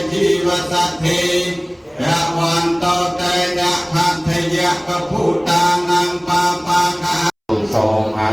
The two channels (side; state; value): both; identical; correlation 1.00